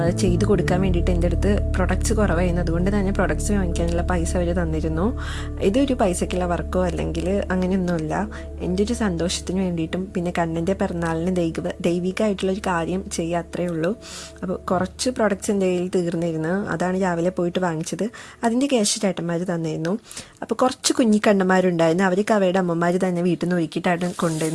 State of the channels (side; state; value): both; identical; correlation 1.00